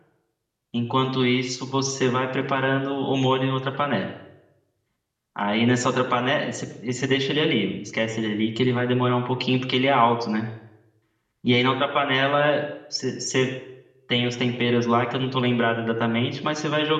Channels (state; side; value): identical; both; correlation 1.00